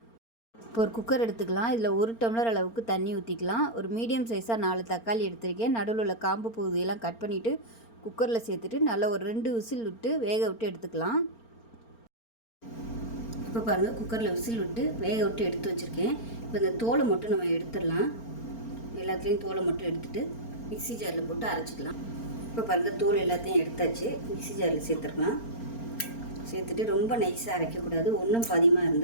இப்போ ஒரு குக்கர் எடுத்துக்கலாம். இதில் 1 டம்ளர் அளவுக்கு தண்ணி ஊற்றிக்கலாம். ஒரு மீடியம் சைஸாக 4 தக்காளி எடுத்திருக்கேன். நடுவில் உள்ள காம்பு பகுதியெல்லாம் கட் பண்ணிவிட்டு குக்கரில் சேர்த்துட்டு நல்லா ஒரு 2 விசில் விட்டு வேக விட்டு எடுத்துக்கலாம். இப்போ பாருங்கள், குக்கரில் விசில் விட்டு வேக விட்டு எடுத்து வச்சுருக்கேன். இப்போ இந்த தோலை மட்டும் நம்ம எடுத்துடலாம். எல்லாத்துலேயும் தோலை மட்டும் எடுத்துகிட்டு மிக்ஸி ஜாரில் போட்டு அரைச்சிக்கலாம். இப்போ பாருங்கள், தோல் எல்லாத்தையும் எடுத்தாச்சு. மிக்ஸி ஜாரில் சேர்த்துருக்கலாம். சேர்த்துட்டு ரொம்ப நைஸாக அரைக்கக்கூடாது. ஒன்றும் பாதியமாக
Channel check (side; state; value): right; late; 4.4 ms